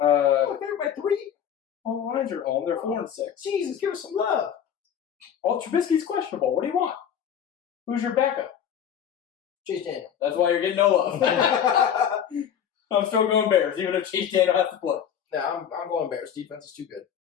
they're by 3? Well, the Lions are home. They're 4-6. Jesus, give us some love. Well, Trubisky's questionable. What do you want? Who's your backup? Chase Daniel. That's why you're getting no love. I'm still going Bears, even if Chase Daniel has to play. Nah, I'm going Bears. Defense is too good.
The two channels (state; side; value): quieter; right; 8.8 dB